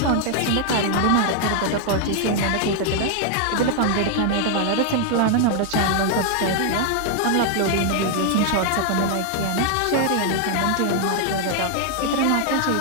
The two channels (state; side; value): different; both; correlation 0.00